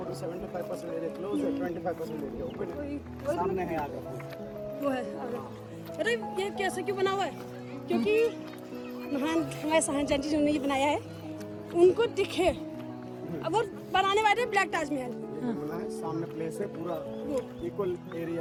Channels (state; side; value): identical; both; correlation 1.00